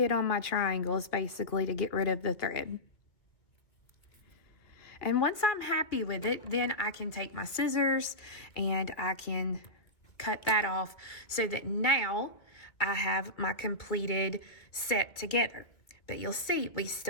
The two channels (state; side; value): late; right; 1.9 ms